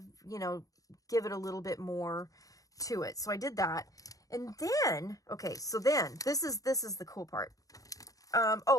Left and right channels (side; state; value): right; late; 0.17 ms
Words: give it a little bit more to it. So I did that. And then, okay, so then this is the cool part.